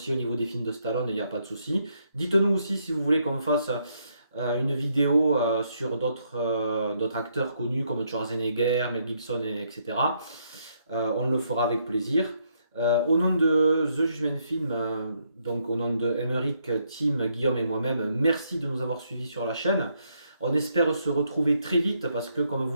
au niveau des films de Stallone, il n'y a pas de souci. Dites-nous aussi si vous voulez qu'on fasse une vidéo sur d'autres acteurs connus comme Schwarzenegger, Mel Gibson, etc. On le fera avec plaisir. Au nom de The Judgment Film, donc au nom de Emeric, Tim, Guillaume et moi-même, merci de nous avoir suivis sur la chaîne. On espère se retrouver très vite parce que, comme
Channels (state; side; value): inverted; both; correlation -0.75